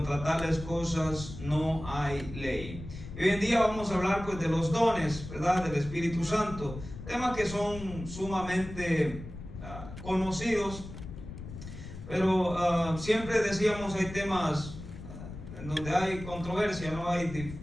tales cosas no hay ley. Y hoy en día vamos a hablar, pues, de los dones, ¿verdad?, del Espíritu Santo, temas que son sumamente conocidos, pero siempre decíamos, hay temas en donde hay controversia, no hay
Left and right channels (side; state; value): left; noise; rumble, 11 dB below the sound